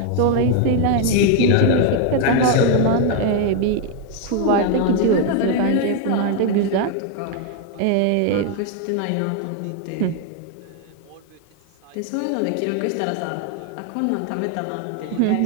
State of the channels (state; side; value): different; both; correlation 0.01